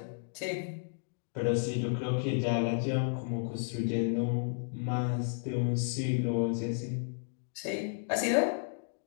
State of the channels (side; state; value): right; silent; digital silence